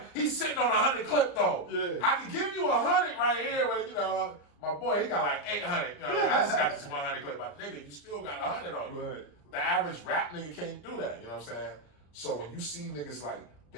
he's sitting on 100 clip though. Yeah. I can give you 100 right here, but my boy, he got like 800. I just got this 100 clip. But nigga, you still got 100 on you. Right. The average rap nigga can't do that. You know what I'm saying? So when you see niggas like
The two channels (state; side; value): late; right; 34 ms